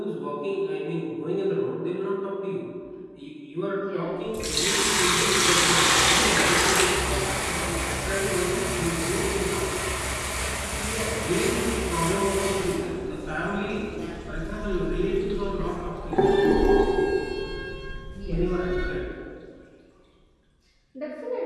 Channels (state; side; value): identical; both; correlation 1.00